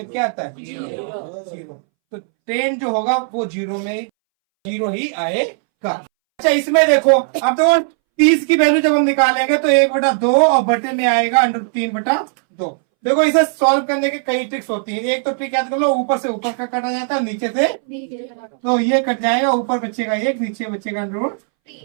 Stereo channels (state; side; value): silent; left; 65 dB below the other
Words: क्या आता है 0। तो टेन जो होगा वो 0 में 0 ही आएगा। अच्छा इसमें देखो, अब देखो 30 की वैल्यू जब हम निकालेंगे तो 1/2 और बटे में आएगा √3/2। देखो इसे सॉल्व करने के कई ट्रिक्स होती हैं। एक तो ट्रिक याद कर लो, ऊपर से ऊपर का काटा जाता है, नीचे से, तो ये कट जाएगा, ऊपर बचेगा 1, नीचे बचेगा